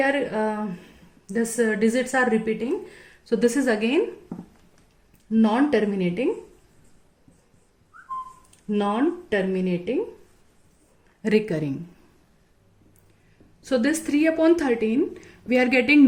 are digits are repeating, so this is again non-terminating recurring. So this 3 upon 13 we are getting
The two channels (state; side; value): identical; both; correlation 1.00